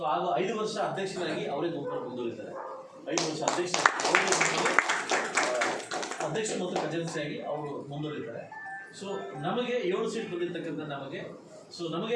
ಆಗ 5 ವರ್ಷ ಅಧ್ಯಕ್ಷರಾಗಿ ಅವರೇ ಗುಂಪನ್ನು ಮುಂದುವರಿತಾರೆ. 5 ವರ್ಷ ಅಧ್ಯಕ್ಷ ಮತ್ತು ಖಜಾನ್ಸಿಯಾಗಿ ಅವರು ಮುಂದುವರಿತಾರೆ. ಸೊ ನಮಗೆ 7 ಸೀಟ್ ಬಂದಿರ್ತಕ್ಕಂಥ ನಮಗೆ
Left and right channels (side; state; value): both; identical; correlation 1.00